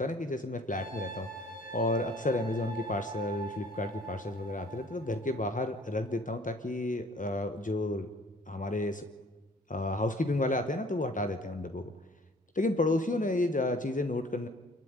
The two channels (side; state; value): both; normal; correlation 0.54